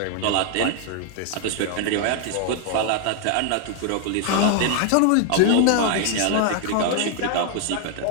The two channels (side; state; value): both; different; correlation 0.00